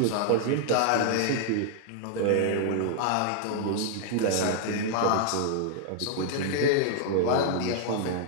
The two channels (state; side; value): different; both; correlation 0.00